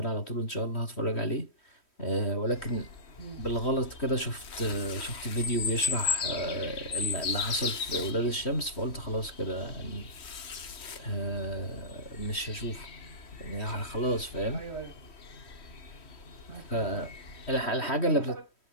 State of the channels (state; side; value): late; right; 3.1 ms